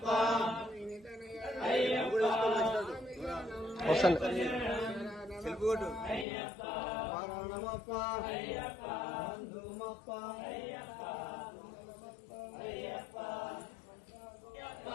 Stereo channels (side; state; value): right; drops out; at 6.2 s